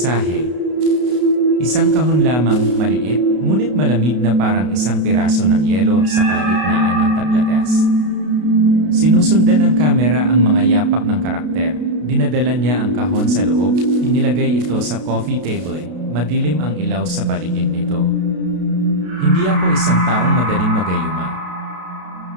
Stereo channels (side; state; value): left; late; 32 ms